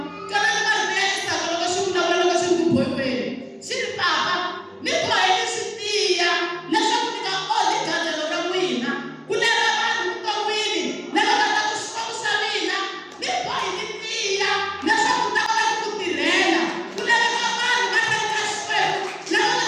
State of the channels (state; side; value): identical; both; correlation 1.00